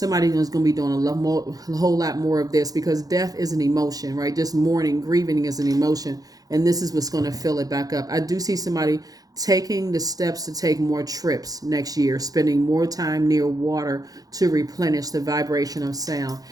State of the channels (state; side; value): late; left; 0.18 ms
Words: is going to be doing a whole lot more of this, because death is an emotion, right? Just mourning, grieving is an emotion, and this is what's going to fill it back up. I do see somebody taking the steps to take more trips next year, spending more time near water to replenish the vibration of sound.